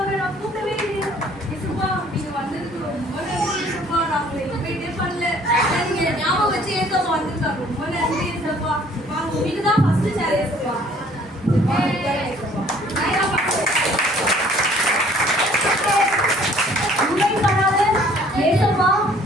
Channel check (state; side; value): normal; both; correlation 0.57